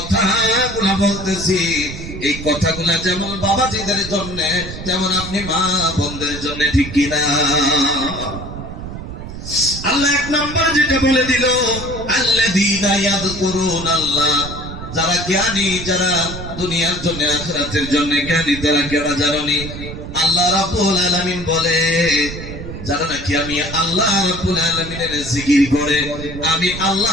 বলতেছি, এই কথাগুলা যেমন বাবাজিদের জন্য, তেমন আপনি মা বোনদের জন্য, ঠিক কিনা? আল্লাহ এক নম্বর যেটা বলে দিল, আল্লাযীনা ইয়াযকুরুনাল্লাহ, যারা জ্ঞানী, যারা দুনিয়ার জন্য আখিরাতের জন্য জ্ঞানী, তারা কেরা জানেনি? আল্লাহ রাব্বুল আলামিন বলে, যারা নাকি আমি আল্লাহ রাব্বুল আলামিনের জিকির করে, আমি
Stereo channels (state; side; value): noise; right; rumble, 10 dB below the sound